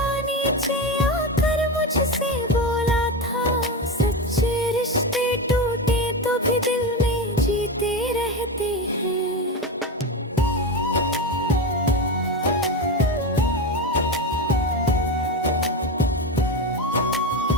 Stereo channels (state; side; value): normal; both; correlation 0.18